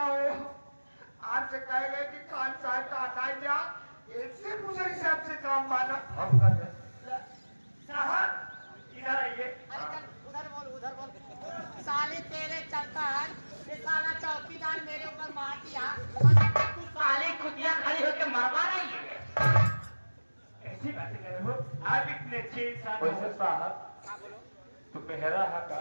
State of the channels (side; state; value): both; inverted; correlation -1.00